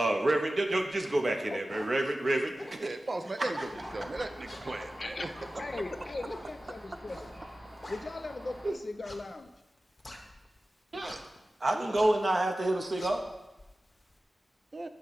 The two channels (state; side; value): normal; both; correlation 0.95